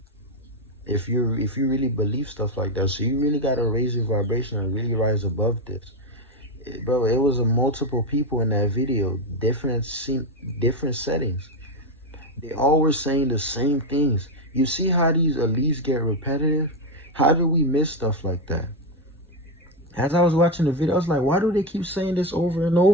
if you really believe stuff like that. So you really gotta raise your vibration and really rise above this. Bro, it was a multiple people in that video, different settings. They all were saying the same things. You see how these elites get repetitive? How do we miss stuff like that? As I was watching the video, I was like, why do they keep saying this over and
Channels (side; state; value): both; normal; correlation 0.09